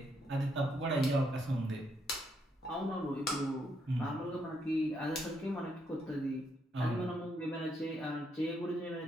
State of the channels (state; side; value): normal; both; correlation 0.76